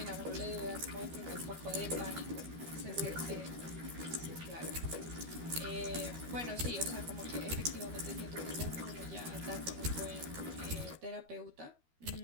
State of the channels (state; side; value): late; left; 13 ms